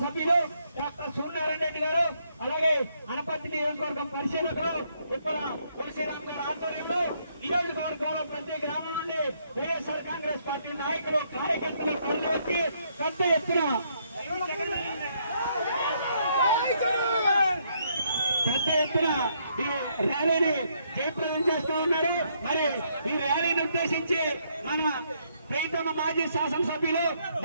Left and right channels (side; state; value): both; inverted; correlation -0.72